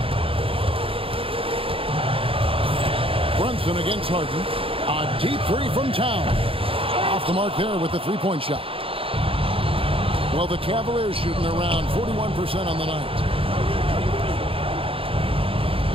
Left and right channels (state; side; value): late; left; 0.27 ms